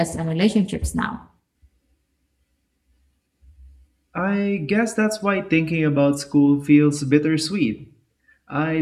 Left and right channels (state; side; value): identical; both; correlation 1.00